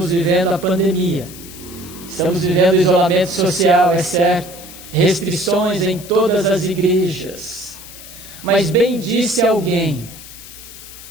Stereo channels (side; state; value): left; noise; hiss, 16 dB below the sound